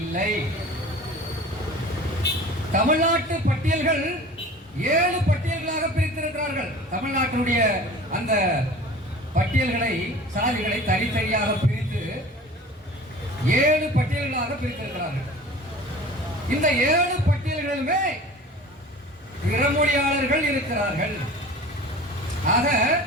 தமிழ்நாட்டு பட்டியல்கள் 7 பட்டியல்களாக பிரித்திருக்கிறார்கள். தமிழ்நாட்டினுடைய அந்த பட்டியல்களை, சாதிகளை தனித்தனியாக பிரித்து 7 பட்டியல்களாக பிரித்திருக்கிறார்கள். இந்த 7 பட்டியல்களுமே பிறமொழியாளர்கள் இருக்கிறார்கள். ஆக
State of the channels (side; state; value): both; normal; correlation 0.41